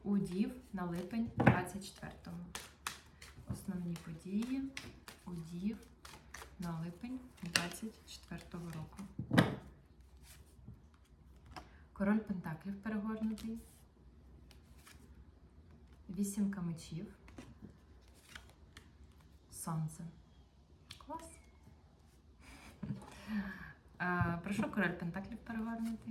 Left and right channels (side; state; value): both; identical; correlation 1.00